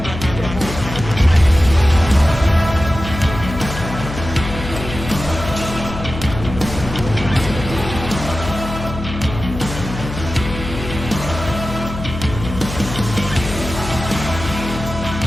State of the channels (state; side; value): noise; left; hum, 8 dB below the sound